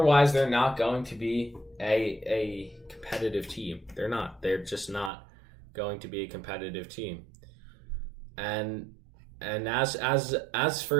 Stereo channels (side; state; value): left; drops out; at 5.1 s